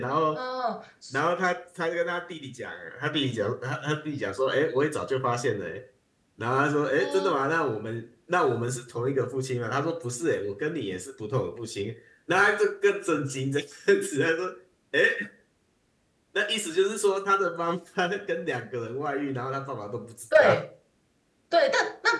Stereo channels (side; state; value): both; identical; correlation 1.00